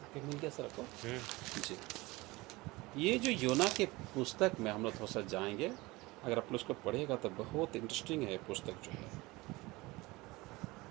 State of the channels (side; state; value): left; quieter; 21.7 dB